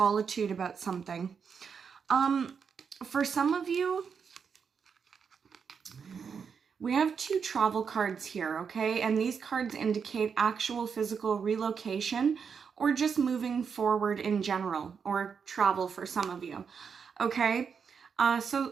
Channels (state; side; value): quieter; left; 6.3 dB